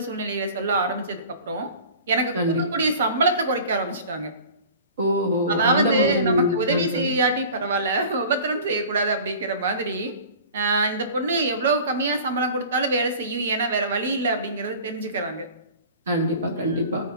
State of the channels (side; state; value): both; inverted; correlation -0.41